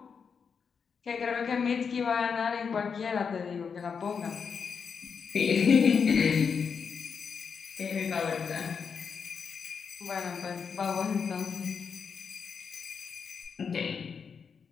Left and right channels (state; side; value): quieter; right; 6.1 dB